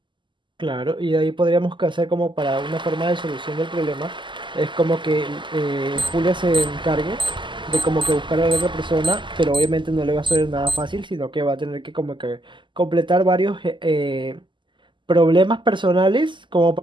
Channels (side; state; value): left; late; 0.24 ms